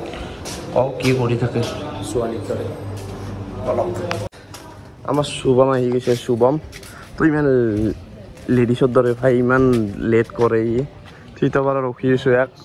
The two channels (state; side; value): identical; both; correlation 1.00